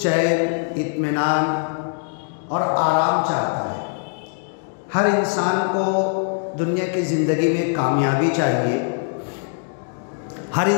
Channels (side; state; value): right; silent; digital silence